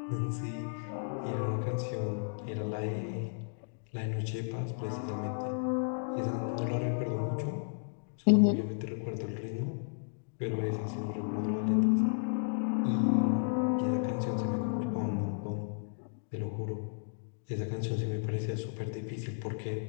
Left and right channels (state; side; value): silent; right; digital silence